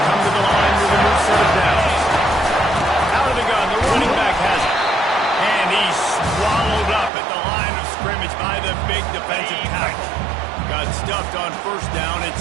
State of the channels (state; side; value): drops out; left; at 7.1 s